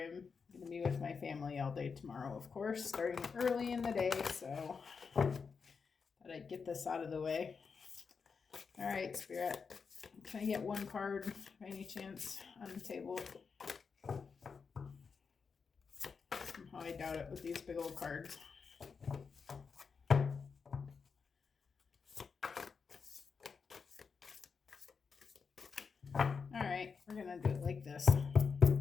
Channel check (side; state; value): right; quieter; 5.5 dB